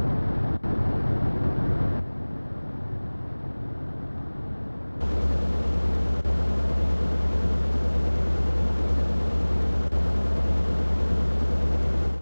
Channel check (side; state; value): both; inverted; correlation -1.00